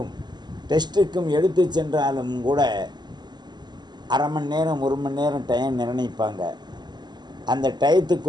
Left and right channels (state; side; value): late; left; 0.21 ms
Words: டெஸ்ட்டுக்கும் எடுத்து சென்றாலும் கூட அரை மணி நேரம் 1 மணி நேரம் டைம் நிர்ணயிப்பாங்க. அந்த